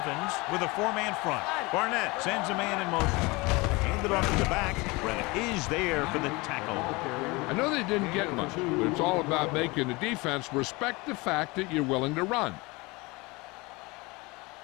with a 4-man front. Barnett sends a man in motion. Handed off to the back. Brett is there for the tackle. I know they didn't get much, but it's all about making the defense respect the fact that you're willing to run.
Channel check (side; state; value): right; quieter; 24.5 dB